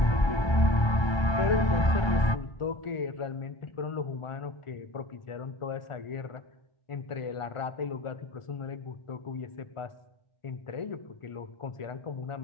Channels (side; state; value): right; late; 1.3 ms